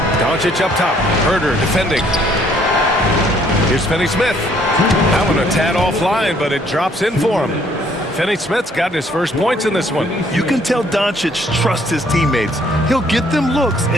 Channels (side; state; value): both; normal; correlation 0.63